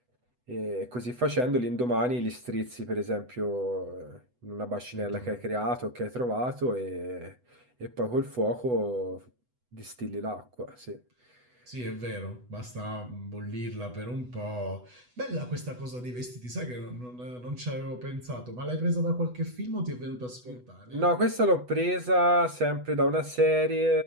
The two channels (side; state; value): left; late; 8.1 ms